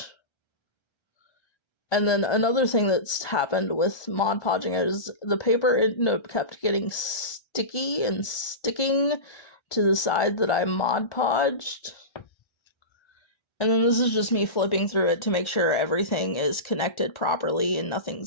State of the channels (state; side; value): late; right; 1.3 ms